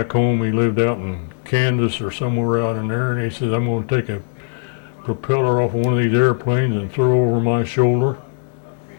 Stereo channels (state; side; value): silent; right; digital silence